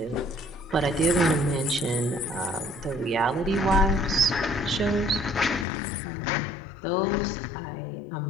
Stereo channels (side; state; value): right; drops out; at 5.7 s